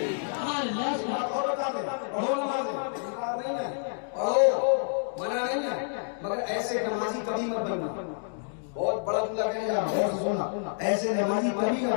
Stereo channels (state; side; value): silent; right; digital silence